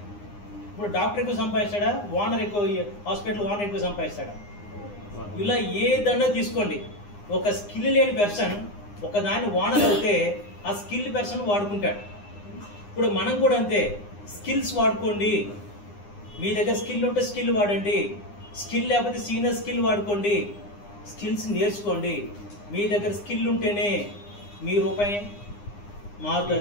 ఇప్పుడు డాక్టర్ ఎక్కువ సంపాదిస్తాడా, ఓనర్ ఎక్కువ, హాస్పిటల్ ఓనర్ ఎక్కువ సంపాదిస్తాడా? ఇలా ఏదన్నా తీసుకోండి, ఒక స్కిల్ లేని పర్సన్ ఒక దాన్ని ఓనర్ అయితే ఆ స్కిల్ పర్సన్ వాడుకుంటాడు. ఇప్పుడు మనం కూడా అంతే, స్కిల్స్ వాడుకోండి. మీ దగ్గర స్కిల్ ఉంటే స్కిల్ వాడండి, స్కిల్ లేకపోతే సీనియర్ స్కిల్ వాడుకోండి, స్కిల్స్ నేర్చుకోండి. మీ దగ్గర స్కిల్ ఉంటేనే మీ రూపాయి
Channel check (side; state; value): right; late; 9.8 ms